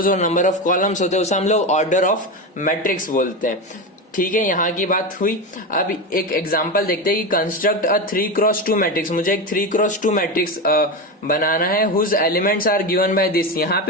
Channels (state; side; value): normal; both; correlation 0.18